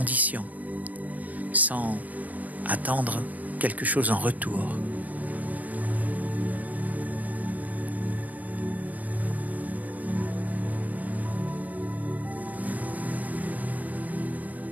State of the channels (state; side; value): late; left; 0.080 ms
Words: sans attendre quelque chose en retour.